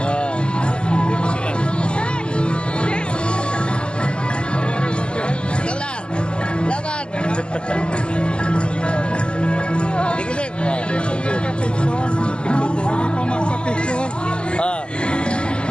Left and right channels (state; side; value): late; right; 0.050 ms